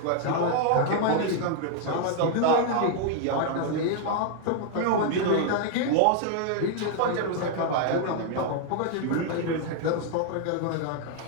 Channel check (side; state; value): both; different; correlation 0.00